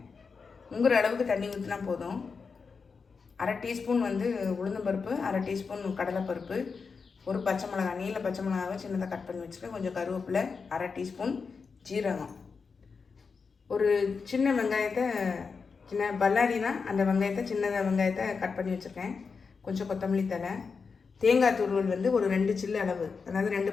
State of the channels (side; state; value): right; quieter; 5.2 dB